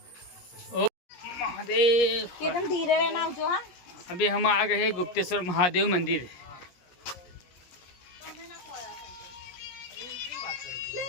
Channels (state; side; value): late; right; 17 ms